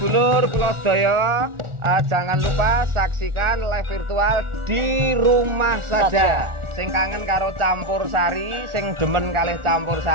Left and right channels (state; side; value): late; left; 1.4 ms